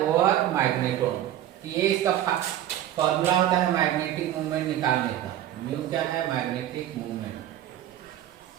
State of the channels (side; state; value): left; quieter; 12.1 dB